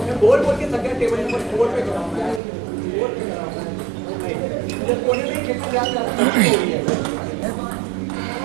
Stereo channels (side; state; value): left; drops out; at 2.4 s